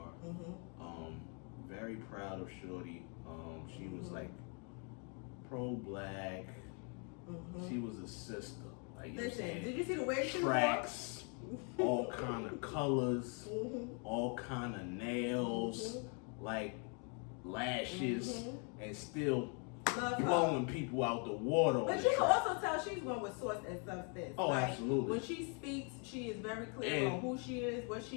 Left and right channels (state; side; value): quieter; right; 38.0 dB